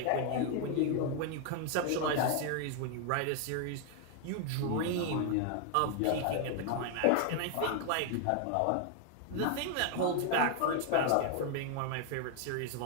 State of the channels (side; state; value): both; different; correlation 0.00